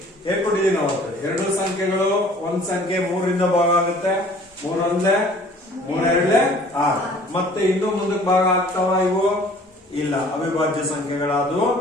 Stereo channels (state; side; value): normal; both; correlation 0.52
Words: ಹೇಳ್ಕೊಟ್ಟಿದೀನಿ ಅವತ್ತು. ಎರಡು ಸಂಖ್ಯೆಗಳು, ಒಂದ್ ಸಂಖ್ಯೆ 3ರಿಂದ ಭಾಗ ಆಗುತ್ತೆ, 3 ಒಂದೇ 3 ಎರಡ್ಲೆ 6. ಮತ್ತೆ ಇನ್ನೂ ಮುಂದಕ್ಕೆ ಭಾಗ ಆಗ್ತಾವ ಇವು? ಇಲ್ಲ, ಅವಿಭಾಜ್ಯ ಸಂಖ್ಯೆಗಳಾದವು.